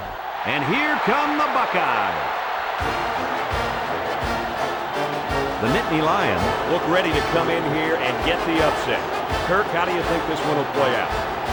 And here come the Buckeyes. The Nittany Lions look ready to come in here and get the upset. Kirk, how do you think this one will play out?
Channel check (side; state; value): both; identical; correlation 1.00